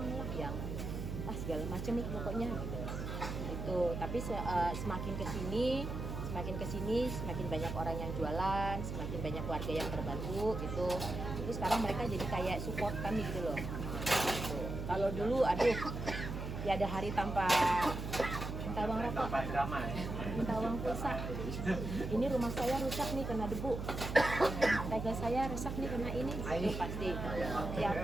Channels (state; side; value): noise; right; hum, 5 dB below the sound